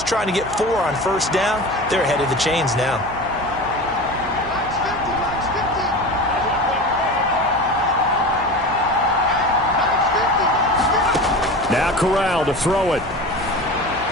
trying to get 4 on 1st down. They're ahead of the chains now. Now Corral to throw it.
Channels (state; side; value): noise; right; hum, 15 dB below the sound